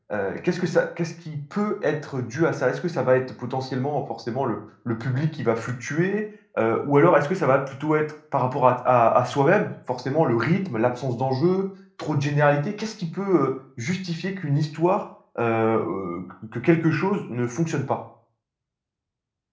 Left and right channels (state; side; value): identical; both; correlation 1.00